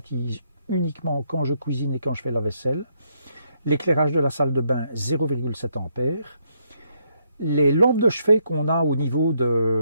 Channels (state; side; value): inverted; both; correlation -0.75